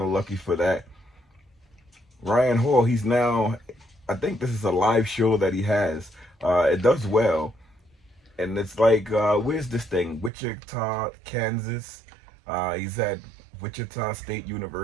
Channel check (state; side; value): drops out; left; at 10.3 s